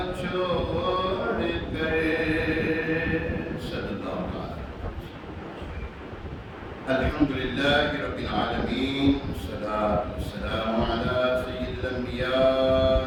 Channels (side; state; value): both; identical; correlation 1.00